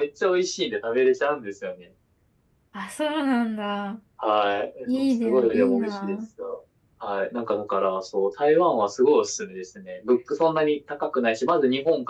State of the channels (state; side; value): identical; both; correlation 1.00